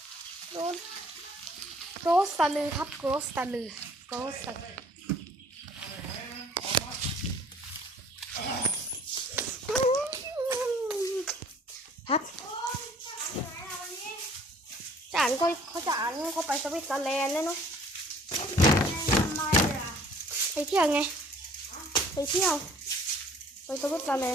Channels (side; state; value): both; normal; correlation 0.55